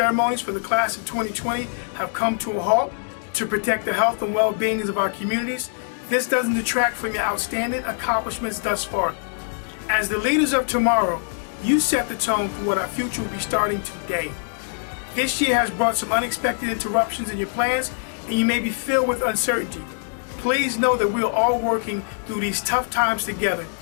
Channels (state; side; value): silent; right; digital silence